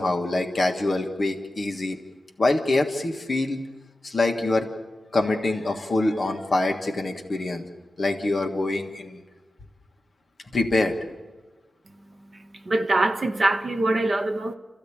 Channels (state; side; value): normal; both; correlation 0.92